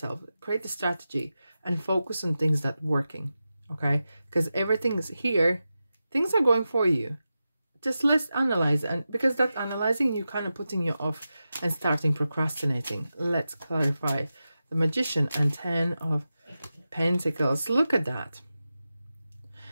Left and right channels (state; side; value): inverted; both; correlation -0.92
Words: create a strategy, and focus on things that are working. Okay, because everything's here, things are going for you. Just let's analyze, and because that analyzing, you kind of putting you off and starting procrastinating. Let's clarify. The Magician and 10 of Pentacles. Look at that.